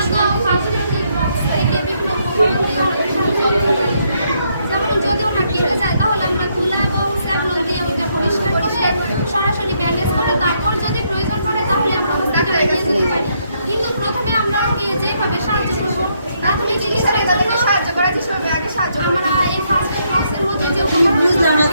সরাসরি ব্যান্ডেজ করে তারপর যদি প্রয়োজন পড়ে তাহলে আমরা হসপিটালে নিয়ে যেতে পারি কিন্তু প্রথমে আমরা ওকে যেভাবে সাহায্য করবো প্রাথমিক চিকিৎসার জন্য সাহায্য করার চেষ্টা করবো আগে সাহায্য আমরা এই ফার্স্ট এড বক্সের মধ্যে যে বুঝলাম না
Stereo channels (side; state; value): both; inverted; correlation -0.74